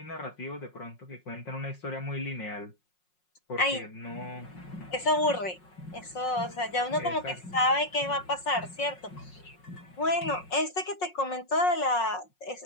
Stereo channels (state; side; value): late; right; 5.5 ms